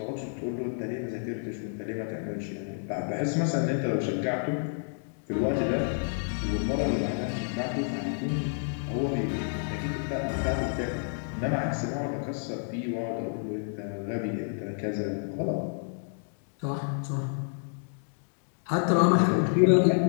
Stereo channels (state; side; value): silent; right; digital silence